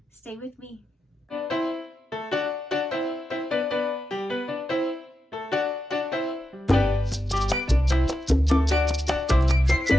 Stay with me.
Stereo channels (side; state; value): both; normal; correlation 0.88